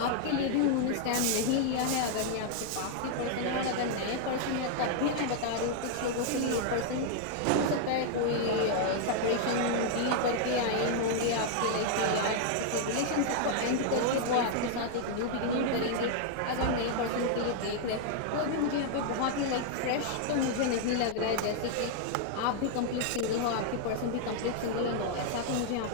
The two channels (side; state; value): both; different; correlation 0.00